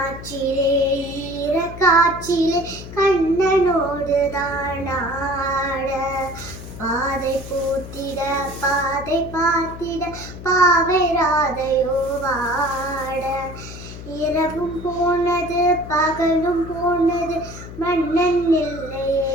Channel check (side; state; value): left; noise; hum, 12 dB below the sound